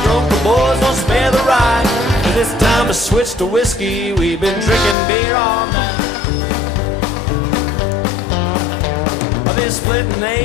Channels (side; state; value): right; drops out; at 5.0 s